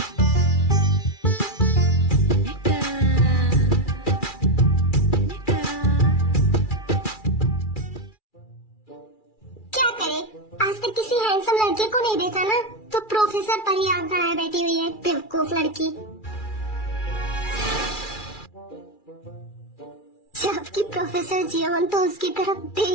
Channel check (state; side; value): late; right; 2.4 ms